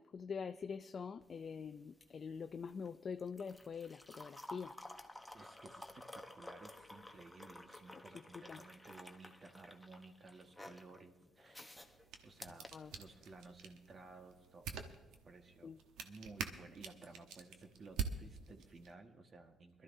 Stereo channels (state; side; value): normal; both; correlation 0.64